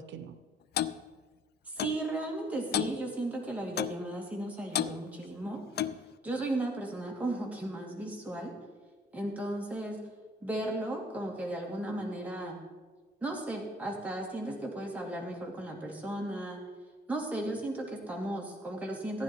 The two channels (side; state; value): both; normal; correlation 0.60